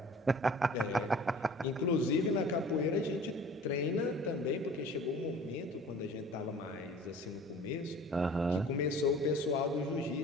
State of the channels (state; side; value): normal; both; correlation 0.47